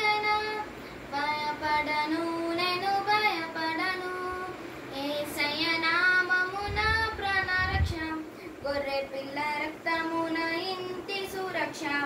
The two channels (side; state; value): both; identical; correlation 1.00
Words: భయపడను, నేను భయపడను. యేసయ్య నామమున ప్రాణరక్ష, గొర్రె పిల్ల రక్తమున ఇంటి సురక్ష.